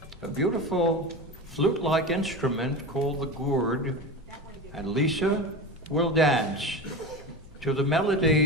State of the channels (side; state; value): both; normal; correlation 0.26